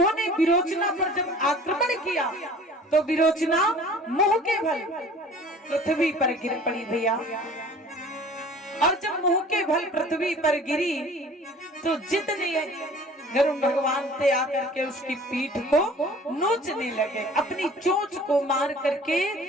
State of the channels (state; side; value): normal; both; correlation 0.47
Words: विरोचना पर जब आक्रमण किया तो विरोचना मुंह के बल पृथ्वी पर गिर पड़ी भैया, और जब मुंह के बल पृथ्वी पर गिरी तो जितने गरुड़ भगवान थे आकर के उसकी पीठ को नोचने लगे, अपनी चोंच को मार करके